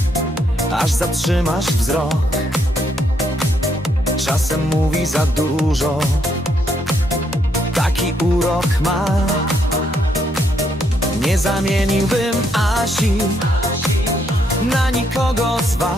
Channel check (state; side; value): normal; both; correlation 0.74